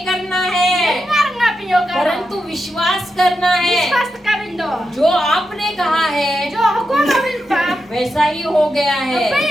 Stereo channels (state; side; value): normal; both; correlation 0.87